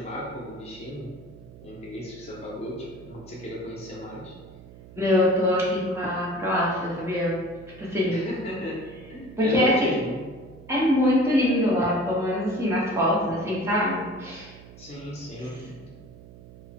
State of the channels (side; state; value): right; noise; hum, 19 dB below the sound